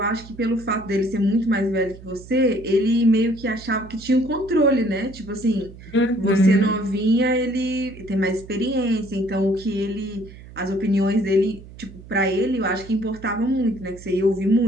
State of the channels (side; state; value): right; noise; hum, 18 dB below the sound